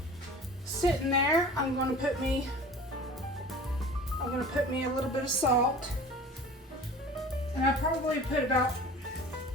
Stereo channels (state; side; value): normal; both; correlation 0.41